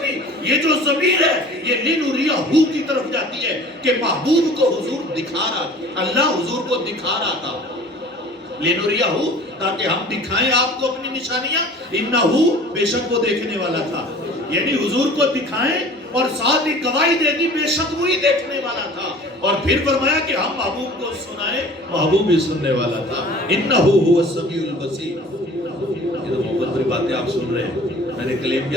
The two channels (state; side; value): normal; both; correlation 0.45